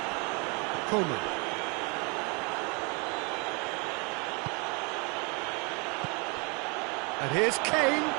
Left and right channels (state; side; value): quieter; left; 31.9 dB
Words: Coman. And here's Kane,